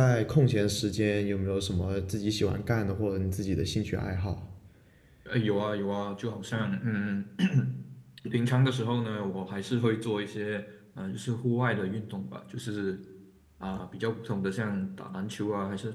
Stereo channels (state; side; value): identical; both; correlation 1.00